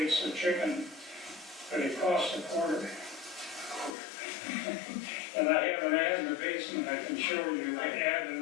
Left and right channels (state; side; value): drops out; right; at 4.0 s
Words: of chicken, but it cost a quarter. And I have an ad in the basement I can show you, like ad